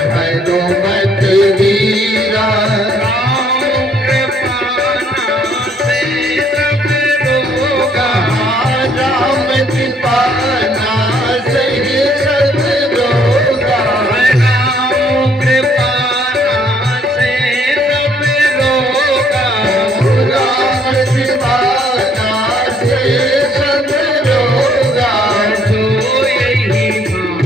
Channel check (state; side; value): normal; both; correlation 0.65